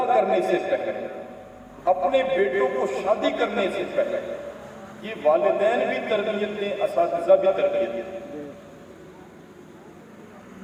کرنے سے پہلے، اپنے بیٹوں کو شادی کرنے سے پہلے یہ والدین بھی تربیت دیں، اساتذہ بھی تربیت دیں۔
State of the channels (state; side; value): identical; both; correlation 1.00